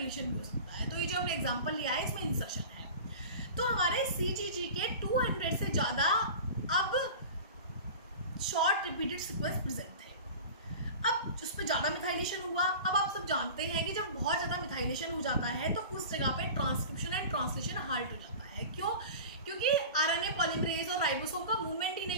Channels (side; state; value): both; inverted; correlation -0.35